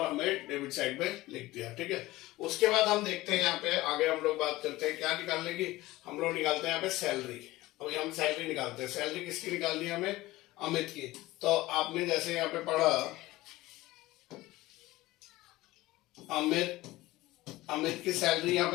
हमें डेबिट साइड पे लिख दिया, ठीक है। उसके बाद हम देखते हैं यहाँ पे आगे हम लोग बात करते हैं क्या निकालने की, हम लोग निकालते हैं यहाँ पे सैलरी। अभी हम सैलरी निकालते हैं, सैलरी किसकी निकालनी है हमें, अमित की। तो आपने जैसे यहाँ पे पढ़ा, अमित की सैलरी यहाँ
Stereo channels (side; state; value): right; quieter; 18.3 dB